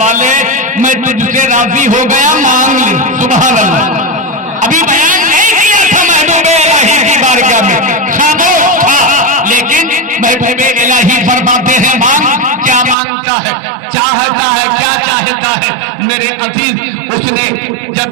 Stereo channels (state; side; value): drops out; left; at 13.0 s